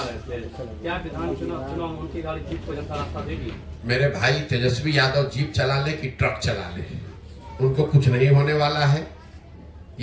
थे, क्या विधान चुनाव उनकी गाड़ी जीत को जनता रास्ता देगी? मेरे भाई, तेजस्वी यादव जीप चला ले कि ट्रक चला ले, उनको कुछ नहीं होने वाला है।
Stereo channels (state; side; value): identical; both; correlation 1.00